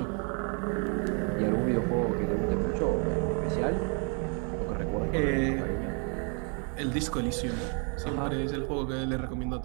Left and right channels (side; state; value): left; quieter; 39.0 dB